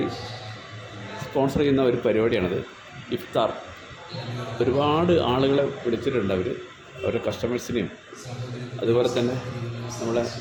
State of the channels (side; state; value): both; identical; correlation 1.00